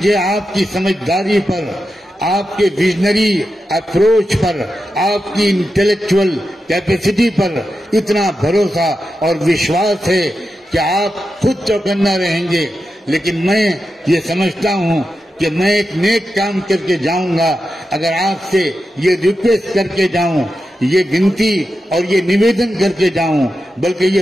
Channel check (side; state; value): both; normal; correlation 0.89